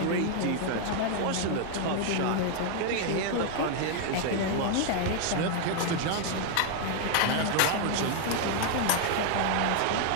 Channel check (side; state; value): both; different; correlation 0.00